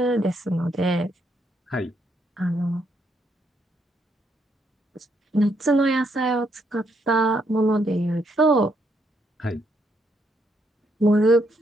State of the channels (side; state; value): both; normal; correlation 0.75